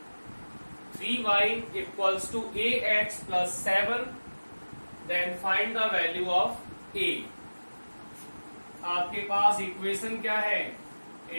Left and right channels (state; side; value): inverted; both; correlation -1.00